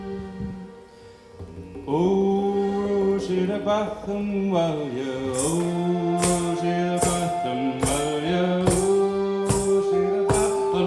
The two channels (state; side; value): identical; both; correlation 1.00